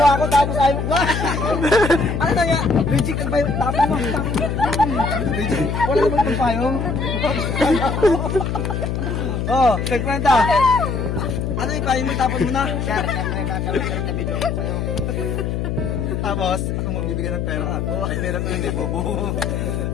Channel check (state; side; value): noise; left; hum, 1 dB below the sound